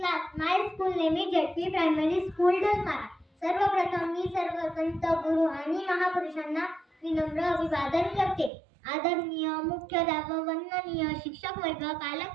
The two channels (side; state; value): left; drops out; at 8.5 s